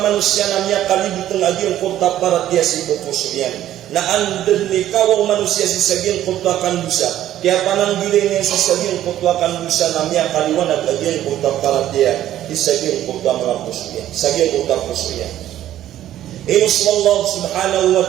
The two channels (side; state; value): left; quieter; 12.5 dB